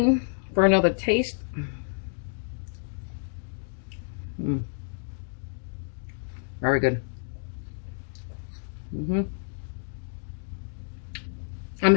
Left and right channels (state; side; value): silent; right; digital silence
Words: for another taste? Very good. I'm